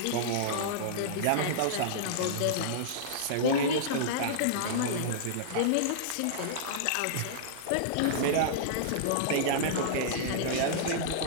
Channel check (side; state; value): both; different; correlation -0.02